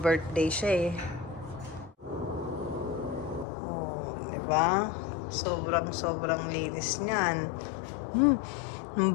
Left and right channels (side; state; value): right; drops out; at 3.5 s